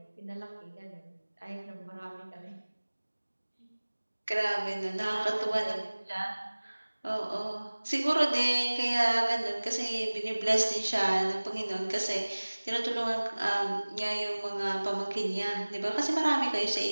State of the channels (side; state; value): both; inverted; correlation -1.00